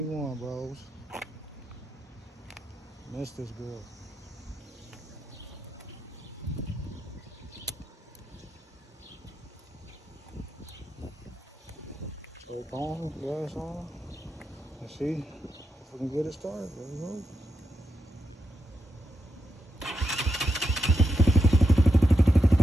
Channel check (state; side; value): normal; both; correlation 0.85